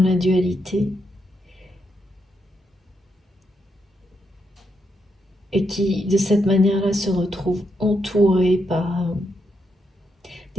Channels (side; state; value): both; normal; correlation 0.81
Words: dualité et qui, de cette manière-là, se retrouve entourée par